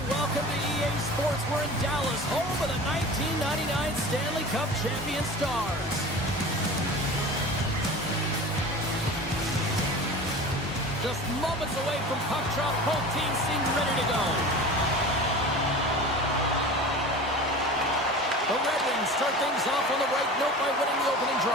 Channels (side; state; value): both; normal; correlation 0.36